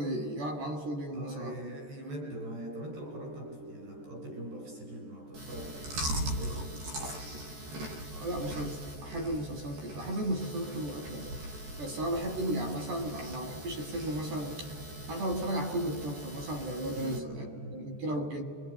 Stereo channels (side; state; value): left; late; 14 ms